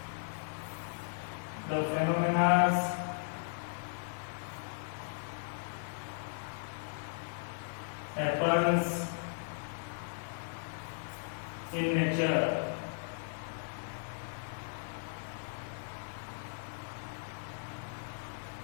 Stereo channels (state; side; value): silent; right; digital silence